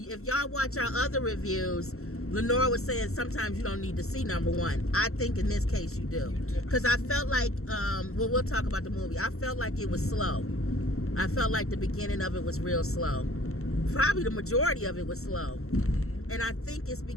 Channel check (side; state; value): right; late; 0.63 ms